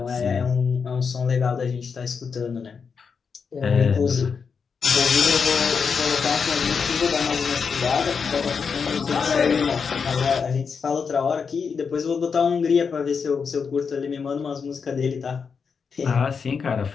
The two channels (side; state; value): right; quieter; 5.8 dB